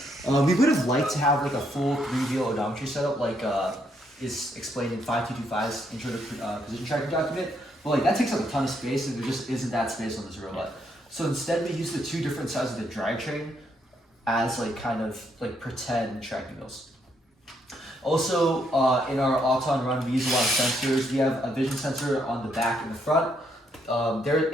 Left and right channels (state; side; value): normal; both; correlation 0.74